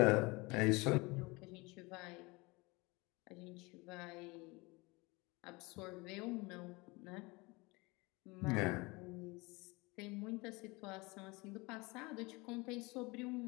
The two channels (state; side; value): quieter; right; 24.9 dB